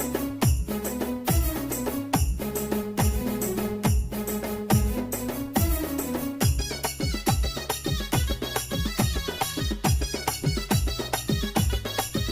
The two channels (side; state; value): both; identical; correlation 1.00